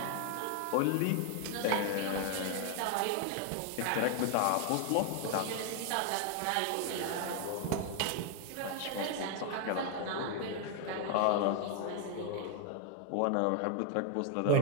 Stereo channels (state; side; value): different; both; correlation 0.00